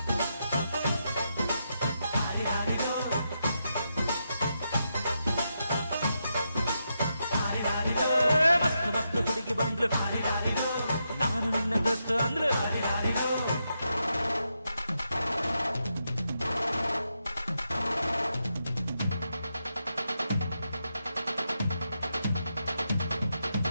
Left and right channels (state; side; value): inverted; both; correlation -0.84